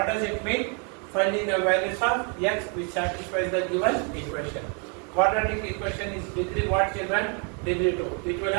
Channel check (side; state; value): left; quieter; 37.7 dB